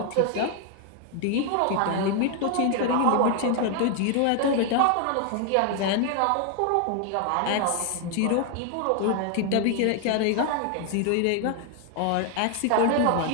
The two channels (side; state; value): both; different; correlation 0.00